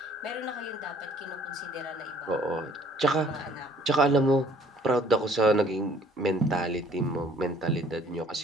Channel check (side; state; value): both; normal; correlation 0.57